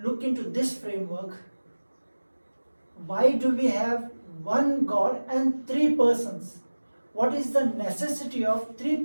look into this framework, why do we have one God and three persons? What is the necessity of three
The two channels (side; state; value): both; inverted; correlation -1.00